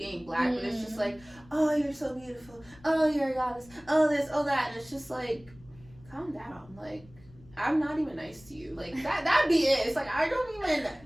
black, but it's just like, oh, you're so beautiful, oh, you're a goddess, oh this, oh that, and it's just like, calm down, like, I'm not even nice to you. Like, that'd be it. It's like, I don't even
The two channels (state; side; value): noise; left; rumble, 24 dB below the sound